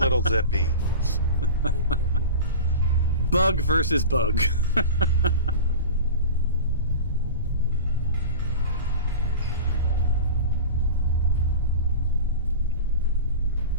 Zippy. Bug versus bug.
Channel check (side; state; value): both; inverted; correlation -0.31